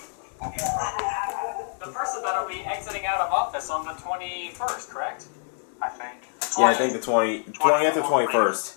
person that'll be exiting out of office on the 21st, correct? I think. Yeah, I think the 20th or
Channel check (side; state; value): right; silent; digital silence